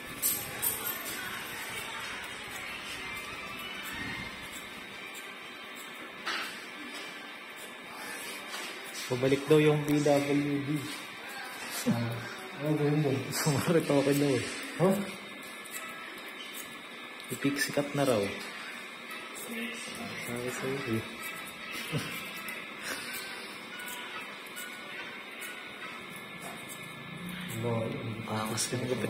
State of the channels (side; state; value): both; identical; correlation 1.00